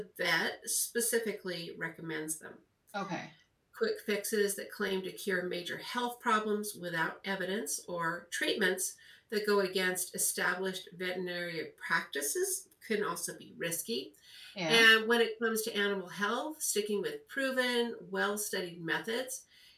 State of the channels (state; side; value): identical; both; correlation 1.00